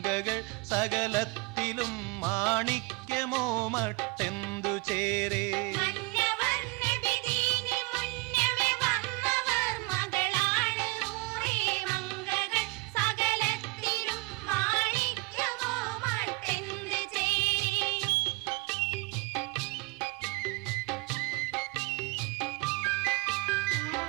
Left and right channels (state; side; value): quieter; left; 25.3 dB